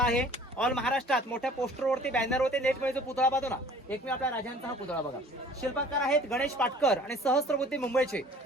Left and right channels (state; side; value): normal; both; correlation 0.50